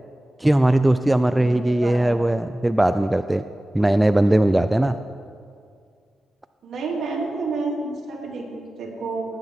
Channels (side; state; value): both; normal; correlation 0.97